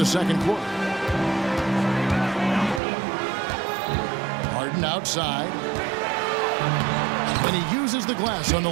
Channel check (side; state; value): left; drops out; at 2.8 s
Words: second quarter. Harden Harden outside. And he uses the glass on the